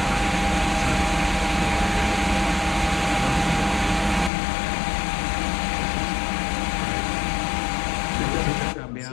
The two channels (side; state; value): right; drops out; at 4.3 s